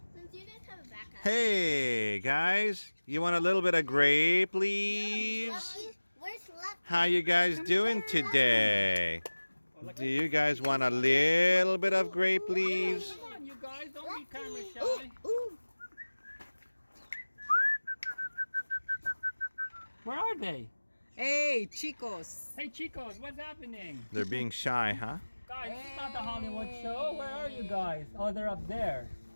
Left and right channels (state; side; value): inverted; both; correlation -1.00